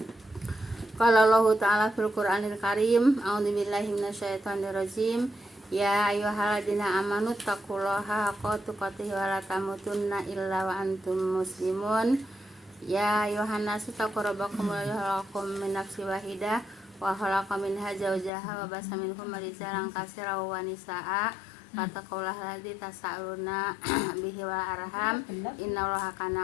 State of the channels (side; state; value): right; drops out; at 18.3 s